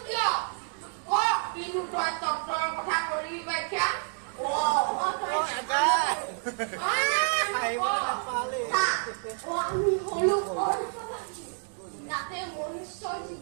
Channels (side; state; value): left; silent; 59 dB below the other